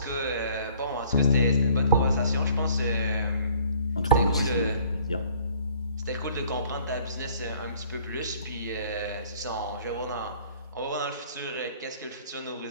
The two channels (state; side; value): inverted; both; correlation -0.56